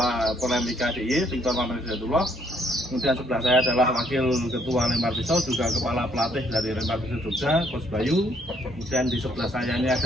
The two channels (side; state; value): both; normal; correlation 0.67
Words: Porlemika DIY, Victor Maman Hidayatullah. Kemudian sebelah saya adalah Wakil Ketua Lempar Pisau, juga Kepala Pelatih dari Lempar Pisau Jogja, Coach Bayu. Kemudian di sebelah saya ini